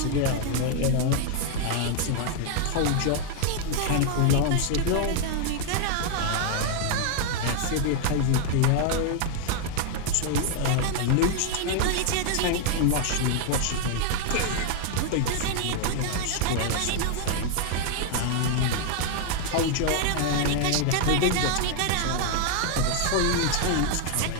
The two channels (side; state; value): both; different; correlation 0.00